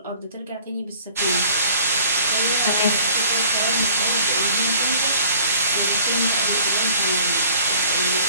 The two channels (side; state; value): both; inverted; correlation -0.51